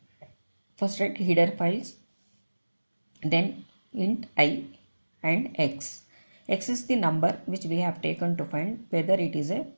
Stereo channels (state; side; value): inverted; both; correlation -1.00